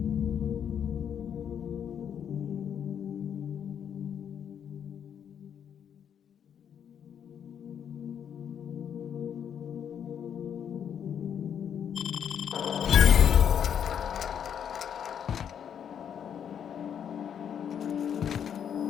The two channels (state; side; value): quieter; right; 8.5 dB